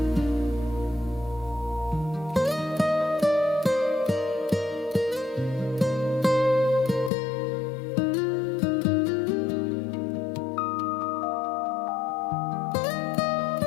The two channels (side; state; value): right; drops out; at 7.1 s